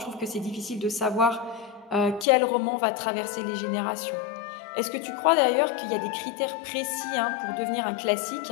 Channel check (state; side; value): drops out; right; at 2.2 s